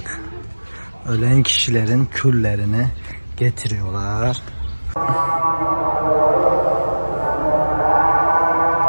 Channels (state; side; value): inverted; both; correlation -1.00